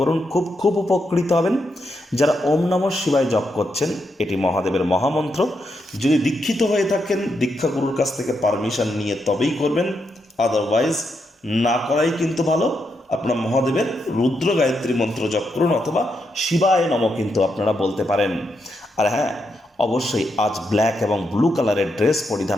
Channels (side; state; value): both; normal; correlation 0.82